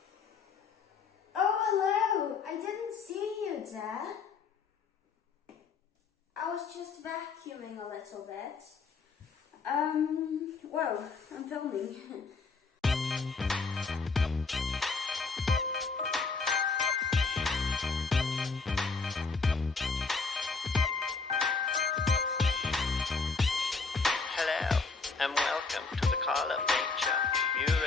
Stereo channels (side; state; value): right; quieter; 4.6 dB